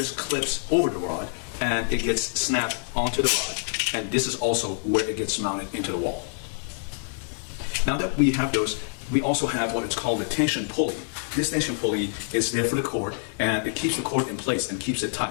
clips over the rod, and it gets snapped onto the rod, and this is also where it gets mounted into the wall. Now that we have those, we also have what is called a tension pulley. This tension pulley is there for the cord, and it keeps the cord in place and keeps it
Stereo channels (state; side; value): silent; right; 61 dB below the other